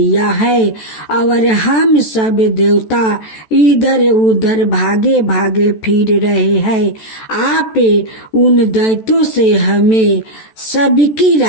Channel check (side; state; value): right; late; 14 ms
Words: है और हम सब देवता इधर उधर भागे भागे फिर रहे हैं। आप उन दैत्यों से हमें सबकी